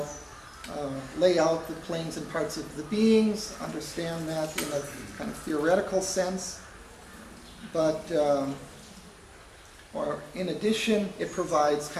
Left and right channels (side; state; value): both; identical; correlation 1.00